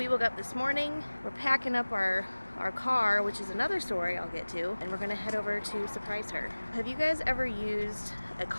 woke up this morning. We're packing up our car, which is another story I'll get to, and we're going to head over to surprise her. Have you guys ever used a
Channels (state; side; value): inverted; both; correlation -1.00